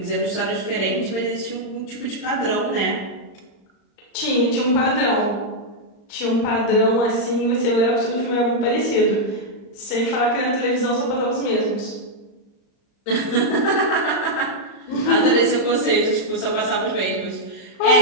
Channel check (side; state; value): right; late; 35 ms